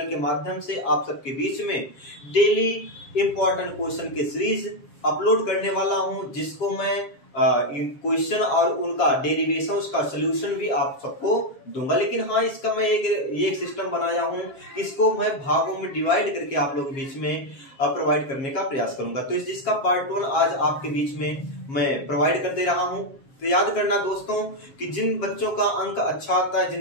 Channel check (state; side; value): late; right; 7.4 ms